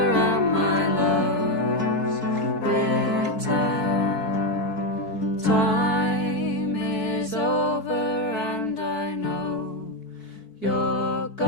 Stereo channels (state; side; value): late; right; 4.6 ms